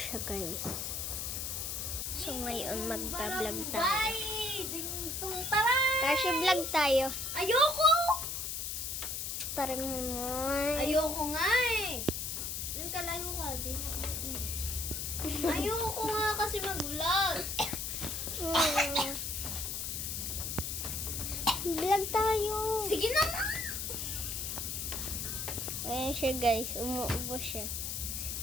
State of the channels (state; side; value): noise; left; hiss, 3 dB below the sound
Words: guys. So, ngayon magbablog tayo. Kashi, vlog tayo. Ayoko! Tara mo naman. Ayoko nga eh. Doon ka layo ka. Ayoko nga kasi mag-vlog. Vlog tayo. Sige na nga. Ayan siya, guys. Umuubo siya.